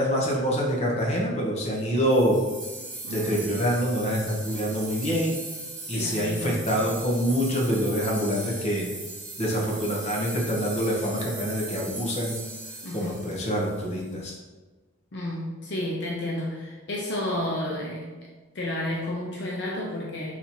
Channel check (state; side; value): normal; both; correlation 0.44